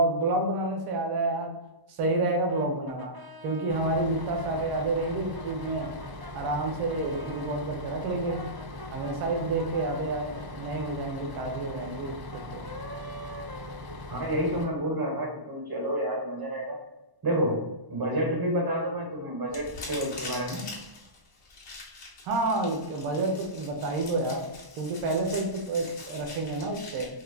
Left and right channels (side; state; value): left; late; 1.0 ms